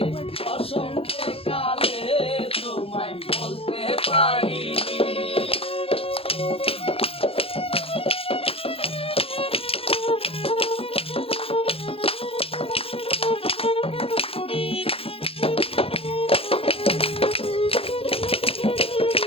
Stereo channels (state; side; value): late; right; 0.28 ms